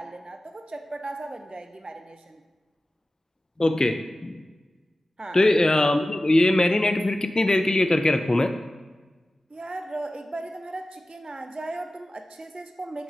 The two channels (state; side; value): normal; both; correlation 0.95